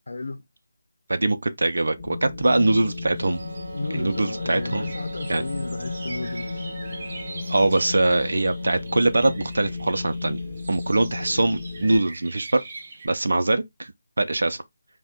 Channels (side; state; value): both; inverted; correlation -0.97